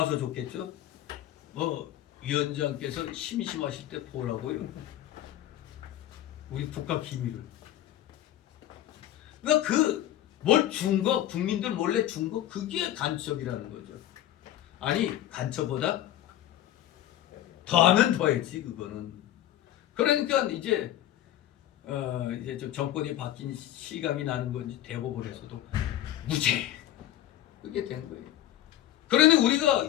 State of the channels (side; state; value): right; quieter; 12.8 dB